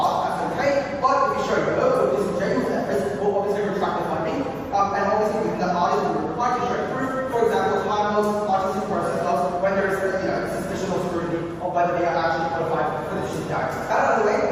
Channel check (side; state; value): both; identical; correlation 1.00